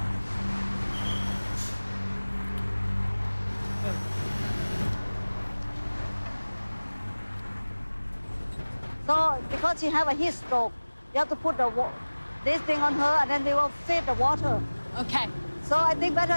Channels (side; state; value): both; inverted; correlation -1.00